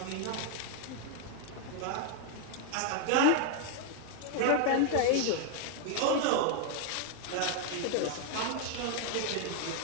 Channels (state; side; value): different; both; correlation 0.01